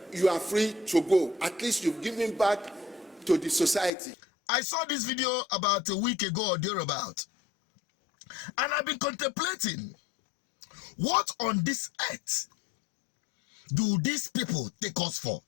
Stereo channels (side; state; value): right; drops out; at 3.9 s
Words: you are free to go. At least you've given back to the society. I saw this video about a week ago or thereabout, and I've been contemplating, what on this earth do these people take us for?